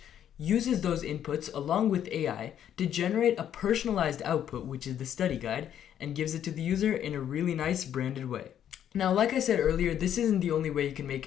uses those inputs along with AI to generate a personalized output, which is the study guide, and gives it to the user in a really nice branded way. Now, like I said earlier, this isn't the only way you can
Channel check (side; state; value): right; quieter; 10.0 dB